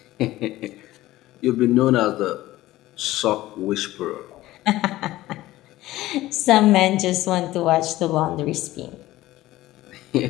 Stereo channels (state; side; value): quieter; right; 16.4 dB